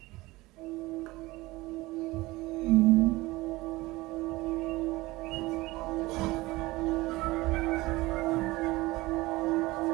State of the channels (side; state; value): left; quieter; 20.3 dB